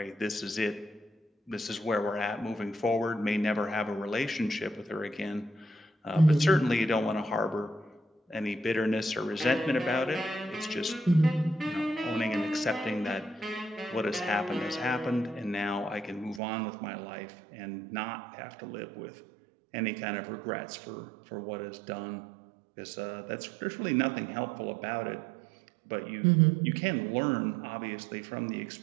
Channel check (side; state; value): left; drops out; at 16.4 s